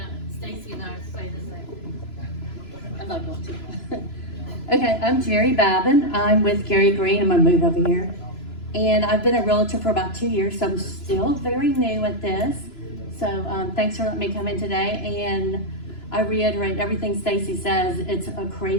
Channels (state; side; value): late; right; 3.0 ms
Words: Stacy and I say the same. I'm not going to. Okay, I'm Jerry Babin. I'm with Gary Green. I'm gonna move over here. And I've been a realtor for about 2 years, so I'm still very new at this. So thanks for letting me come in today. And I reiterate everything Stacy says. It's a